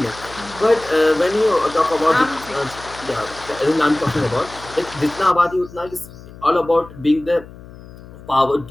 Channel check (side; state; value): left; noise; hum, 18 dB below the sound